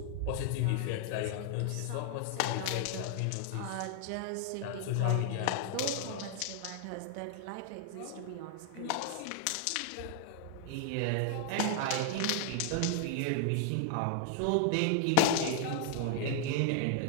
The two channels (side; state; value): both; different; correlation 0.00